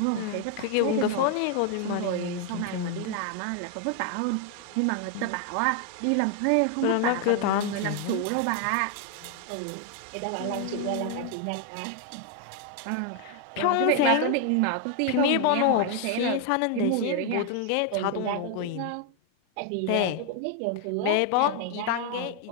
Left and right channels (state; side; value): different; both; correlation 0.00